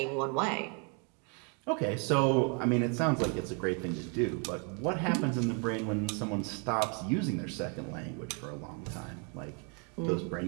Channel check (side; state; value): left; quieter; 37.2 dB